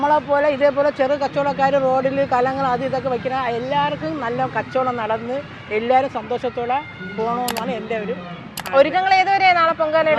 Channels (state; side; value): identical; both; correlation 1.00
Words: പോലെ ഇതേപോലെ ചെറു കച്ചവടക്കാർ റോഡിൽ കലങ്ങൾ അത് ഇതൊക്കെ വയ്ക്കുന്ന എല്ലാവർക്കും നല്ല കച്ചവടം നടന്ന് എല്ലാവരും സന്തോഷത്തോടെ പോകണമെന്നാണ് എൻ്റെ ഒരു ഒരുക്കങ്ങൾ ഏതുവരെ നാളെ